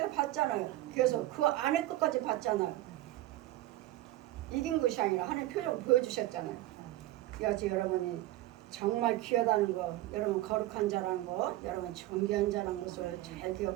봤잖아요. 그래서 그 안에 끝까지 봤잖아요. 이긴 것이 아니라 하나님 표정을 보여주셨잖아요. 여지 여러분이 정말 귀하다는 거, 여러분 거룩한 자라는 거, 여러분 존귀한 자라는 것을 잘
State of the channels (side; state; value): left; quieter; 16.0 dB